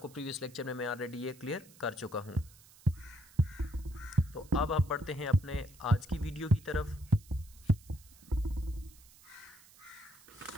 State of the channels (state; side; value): noise; right; hiss, 24 dB below the sound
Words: previous lecture में मैं ऑलरेडी ये क्लियर कर चुका हूँ। तो अब हम बढ़ते हैं अपने आज की वीडियो की तरफ।